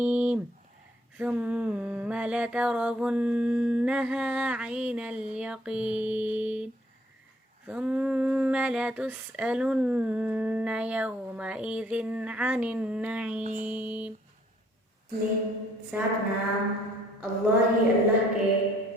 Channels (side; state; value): both; normal; correlation 0.64